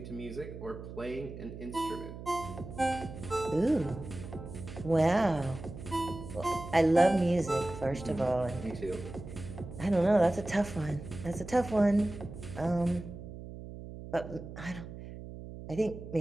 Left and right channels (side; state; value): right; noise; hum, 12 dB below the sound